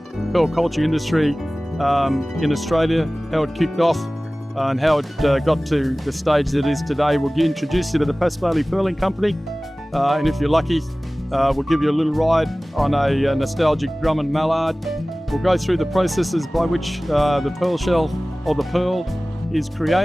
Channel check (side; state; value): both; normal; correlation 0.98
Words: pearl culture industry in Australia, how it kicked off and how it got to the stage that it is today. We'll introduce you to the Pasquale Pearling Company, and if you're lucky, we'll give you a little ride on a nostalgic drum and mallard. We'll go through the processes by which the pearl shell or the pearl is